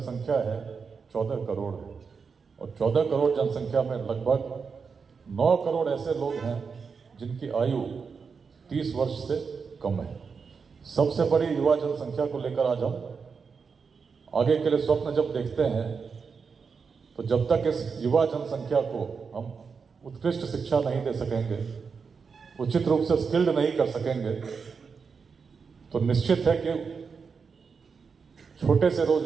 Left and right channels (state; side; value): quieter; left; 5.5 dB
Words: है 14 करोड़ है, और 14 करोड़ जनसंख्या में लगभग 9 करोड़ ऐसे लोग हैं जिनकी आयु 30 वर्ष से कम है। सबसे बड़ी युवा जनसंख्या को लेकर आज हम आगे के लिए स्वप्न जब देखते हैं, तो जब तक इस युवा जनसंख्या को हम उत्कृष्ट शिक्षा नहीं दे सकेंगे, उचित रूप से स्किल्ड नहीं कर सकेंगे, तो निश्चित है कि छोटे से